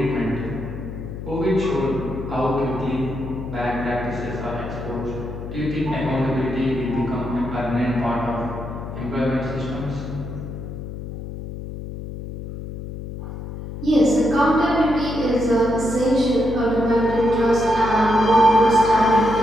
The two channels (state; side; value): noise; left; hum, 9 dB below the sound